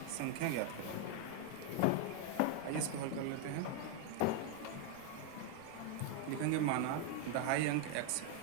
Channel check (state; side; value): different; both; correlation 0.01